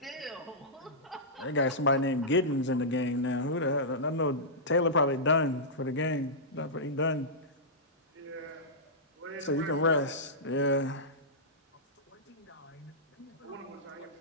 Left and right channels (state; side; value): normal; both; correlation -0.14